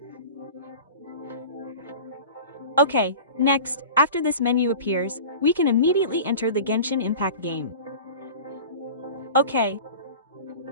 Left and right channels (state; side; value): inverted; both; correlation -0.36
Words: Okay, next, after this menu appears, we can immediately enter the Genshin Impact game. Okay.